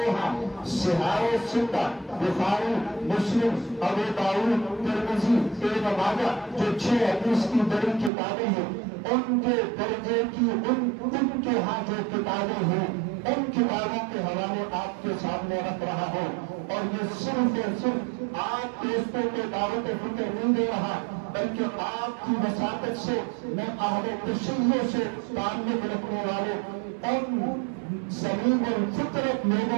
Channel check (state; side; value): drops out; left; at 8.1 s